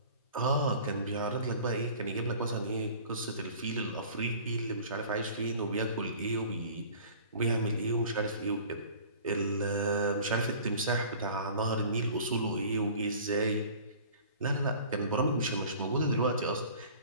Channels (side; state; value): both; inverted; correlation -0.45